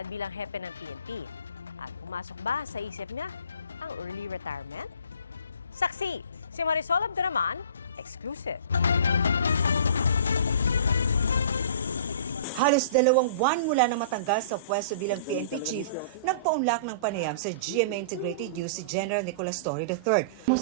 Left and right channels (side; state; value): both; inverted; correlation -0.43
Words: bilang hepe ng PNP. At pumasok ba sa isip niya ang early retirement? Saksi, si Marisol Abduraman, exclusive. Halos 2 buwan mula na matanggal sa pwesto bilang PNP Chief, nagpaunlak ng panayam sa GMA Integrated News si General Nicolas Torre III.